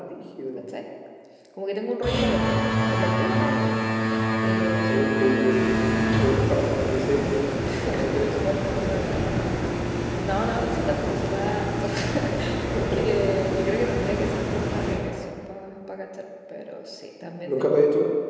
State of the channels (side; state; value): both; identical; correlation 1.00